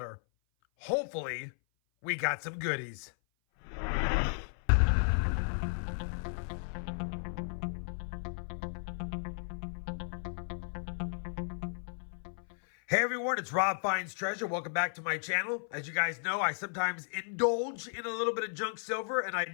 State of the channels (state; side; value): silent; right; 55 dB below the other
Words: Hopefully, we got some goodies. Hey everyone, it's RobFindsTreasure. Welcome back to my channel. As you guys know, I sometimes indulge in a little bit of junk silver, and I